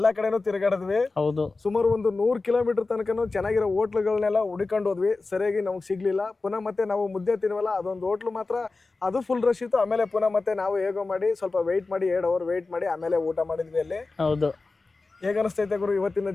ಕಡೆನೂ ತಿರುಗಾಡಿದ್ವಿ. ಹೌದು, ಸುಮಾರು ಒಂದು 100 ಕಿಲೋಮೀಟರ್ ತನಕನೂ ಚೆನ್ನಾಗಿರೋ ಹೋಟ್ಲುಗಳನ್ನೆಲ್ಲ ಹುಡುಕೊಂಡು ಹೋದ್ವಿ, ಸರಿಯಾಗಿ ನಮಗೆ ಸಿಗ್ಲಿಲ್ಲ. ಪುನಃ ಮತ್ತೆ ನಾವು ಮುದ್ದೆ ತಿನ್ವಲ್ಲ, ಅದೊಂದು ಹೋಟ್ಲು ಮಾತ್ರ ಅದು ಫುಲ್ ರಶ್ ಇತ್ತು. ಆಮೇಲೆ ಪುನಃ ಮತ್ತೆ ನಾವು ಹೇಗೋ ಮಾಡಿ ಸ್ವಲ್ಪ ವೆಯ್ಟ್ ಮಾಡಿ 2 ಅವರ್ ವೆಯ್ಟ್ ಮಾಡಿ ಆಮೇಲೆ ಊಟ ಮಾಡಿದ್ವಿ ಅಲ್ಲಿ. ಹೌದು. ಹೇಗೆ ಅನಿಸ್ತೈತೆ ಗುರು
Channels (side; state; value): right; quieter; 3.7 dB